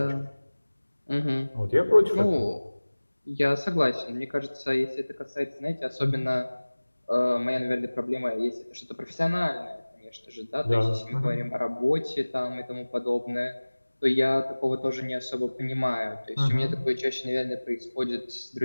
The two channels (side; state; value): both; inverted; correlation -1.00